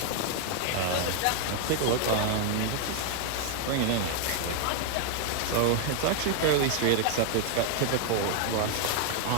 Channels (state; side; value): different; both; correlation 0.00